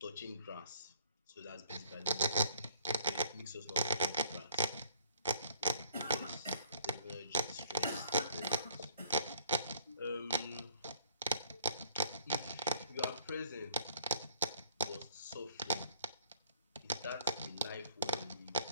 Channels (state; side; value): inverted; both; correlation -0.59